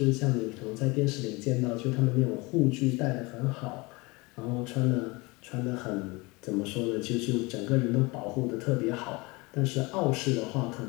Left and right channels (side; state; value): right; quieter; 25.1 dB